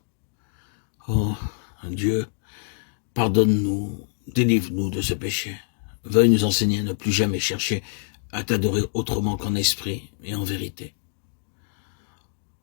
Oh, Dieu, pardonne-nous, délivre-nous de ce péché. Veuille nous enseigner à ne plus jamais chercher à t'adorer autrement qu'en esprit et en vérité.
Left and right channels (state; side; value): silent; right; 59 dB below the other